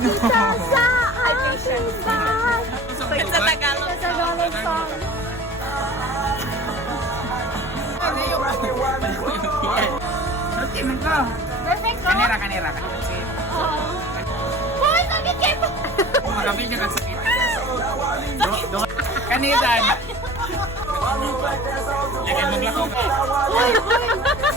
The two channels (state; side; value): normal; both; correlation 0.42